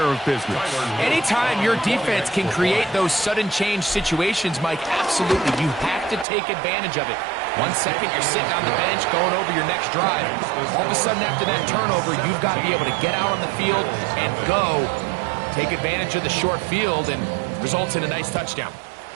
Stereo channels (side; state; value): left; drops out; at 6.2 s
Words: of business. Anytime your defense can create those sudden change situations, Mike, absolutely, you have to take advantage of it. 1 second, you're sitting on the bench going over your next drive. All of a sudden, after that turnover, you've got to be able to get out on the field and go. Take advantage of the short field, and Results in a nice touchdown.